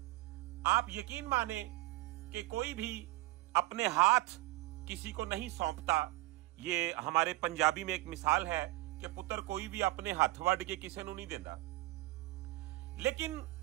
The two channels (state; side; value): quieter; left; 19.1 dB